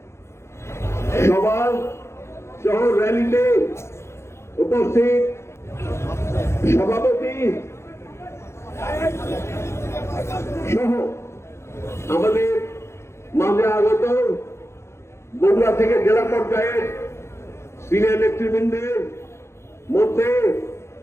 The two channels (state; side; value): late; right; 0.13 ms